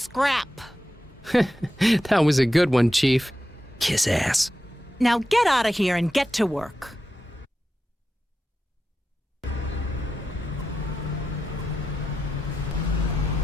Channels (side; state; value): both; normal; correlation 0.90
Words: That was a good one, Chief. Kiss ass. Now get out of here and get to work.